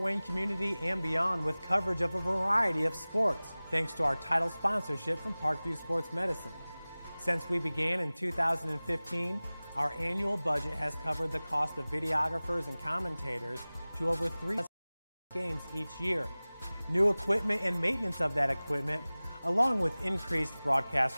Wayne community and beyond with coverage of a variety of sports, thanks to our title sponsorship from Parkview Sports Medicine. Since we began in 2015, our annual budget has covered the cost of videographers and commentators to over 3 games each year, new equipment and maintenance of that equipment, along with increased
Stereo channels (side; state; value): both; inverted; correlation -0.99